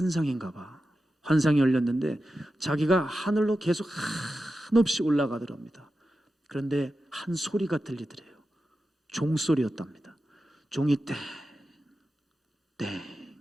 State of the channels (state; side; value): normal; both; correlation 0.91